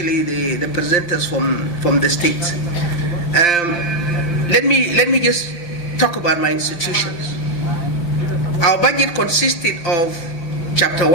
the presenters from the states. Let me just talk about my institutions. Our budget consisted of Chapter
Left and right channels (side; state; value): right; late; 5.8 ms